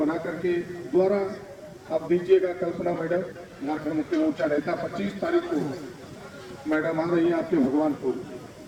करके द्वारा आप दीजिएगा। कल्पना मैडम झारखंड मुक्ति मोर्चा नेता 25 तारीख को मैडम आ रही है आपके भगवानपुर,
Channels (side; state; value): both; identical; correlation 1.00